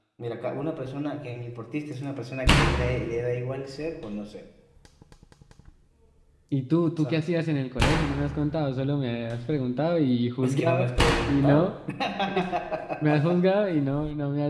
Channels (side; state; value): both; identical; correlation 1.00